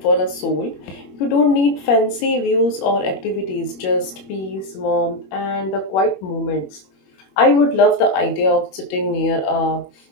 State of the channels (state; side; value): late; right; 21 ms